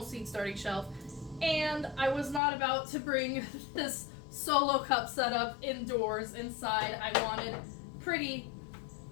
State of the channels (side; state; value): right; drops out; at 2.4 s